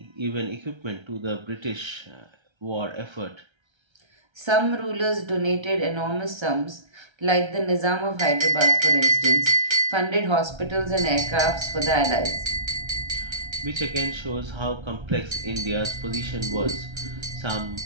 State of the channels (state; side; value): late; left; 1.3 ms